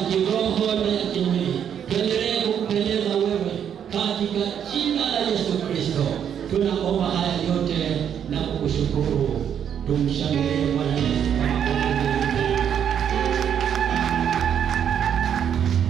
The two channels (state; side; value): quieter; left; 8.7 dB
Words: kiroho na ya kimwili. Tuendelee kukupendeza wewe katika jina la Yesu Kristo. Tunaomba haya yote na kukushukuru. Tumshangilie Bwana Yesu.